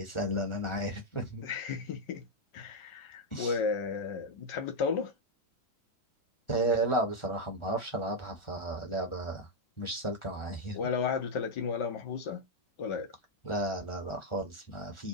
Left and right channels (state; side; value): late; right; 1.4 ms